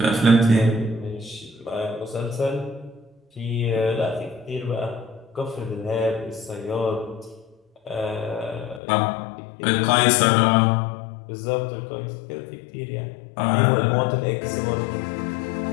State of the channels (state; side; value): drops out; right; at 8.8 s